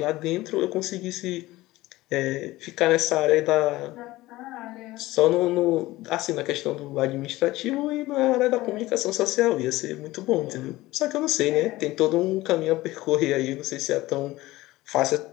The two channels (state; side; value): quieter; right; 18.2 dB